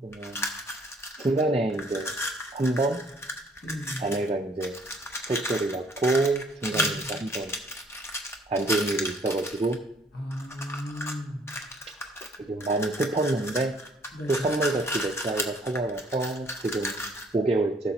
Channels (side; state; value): both; normal; correlation 0.61